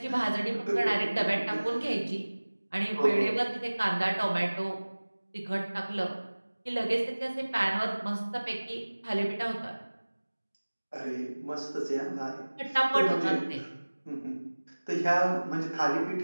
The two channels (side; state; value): both; inverted; correlation -1.00